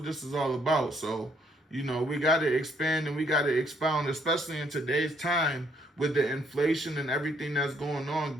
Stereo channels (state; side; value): normal; both; correlation 0.68